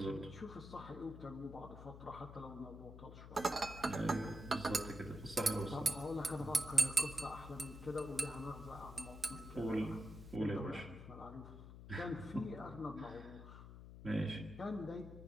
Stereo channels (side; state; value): left; noise; hum, 13 dB below the sound